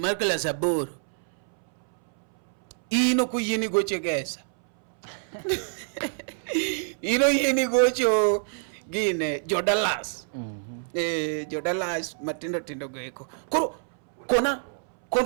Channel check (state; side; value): silent; left; 61 dB below the other